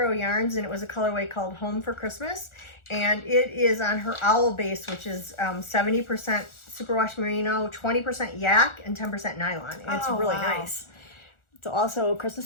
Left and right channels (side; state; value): right; late; 1.4 ms